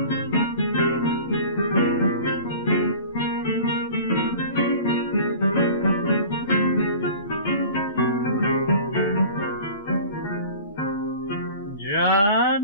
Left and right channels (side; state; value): both; inverted; correlation -0.41